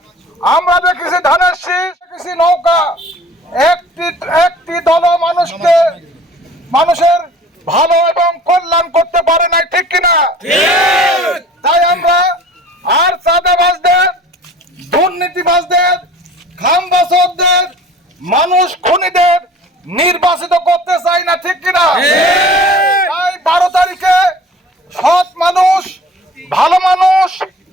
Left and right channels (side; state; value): both; normal; correlation 0.46